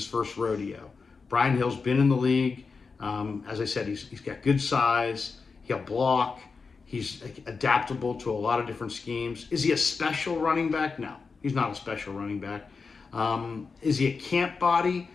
first rodeo. Brian Hill's been in the league. As I said, he's got good size. He'll block. He's adaptable to a lot of different schemes. Is he a special running back? No, he's not a special running back. Is he a camp body?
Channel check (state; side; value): quieter; right; 4.8 dB